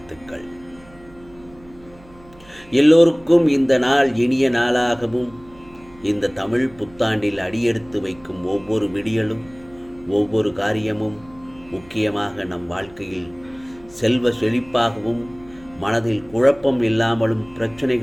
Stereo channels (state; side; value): noise; right; hum, 25 dB below the sound